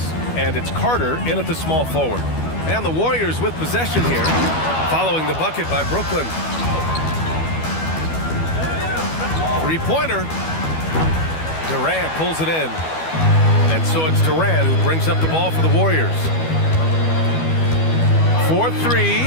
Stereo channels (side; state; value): right; late; 12 ms